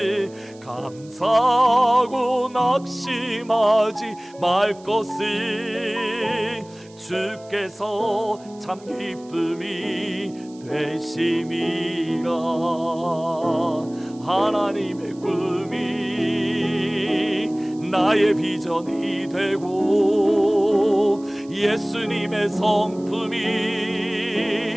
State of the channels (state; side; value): noise; right; hiss, 26 dB below the sound